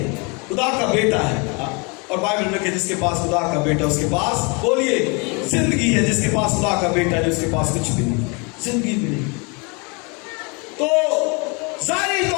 خدا کا بیٹا ہے. اور بائبل میں کہ جس کے پاس خدا کا بیٹا اس کے پاس بولیے زندگی ہے. جس کے پاس خدا کا بیٹا ہے اس کے پاس کچھ بھی نہیں، زندگی بھی نہیں. تو ظاہری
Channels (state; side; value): quieter; right; 31.4 dB